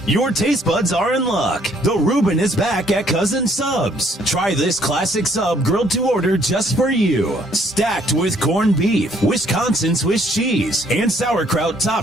Your taste buds are in luck. The Reuben is back at Cousin Subs. Try this classic sub grilled to order just for you. Stacked with corned beef, Wisconsin Swiss cheese, and sauerkraut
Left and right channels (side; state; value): both; normal; correlation 0.64